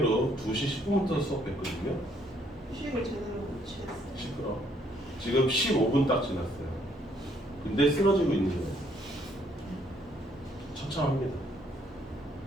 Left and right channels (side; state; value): both; normal; correlation 0.68